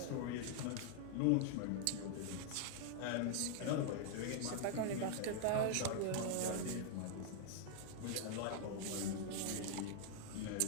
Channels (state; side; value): different; both; correlation 0.00